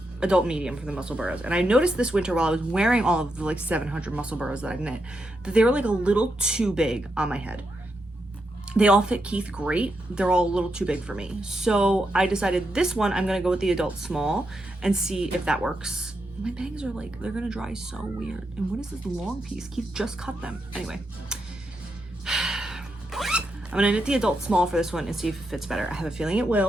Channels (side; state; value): both; normal; correlation 0.83